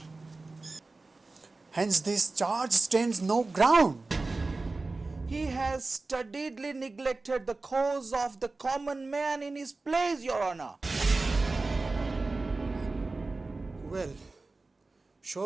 Hence, this charge stands no ground. He has studiedly neglected the cause of the common man in his plays, Your Honor. Well,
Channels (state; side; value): quieter; left; 3.5 dB